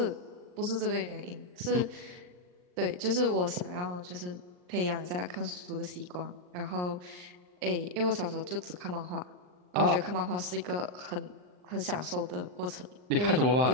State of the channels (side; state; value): left; late; 39 ms